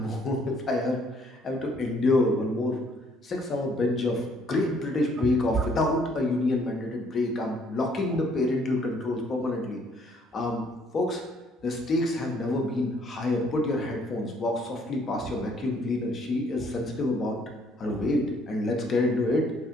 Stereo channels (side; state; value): both; normal; correlation 0.64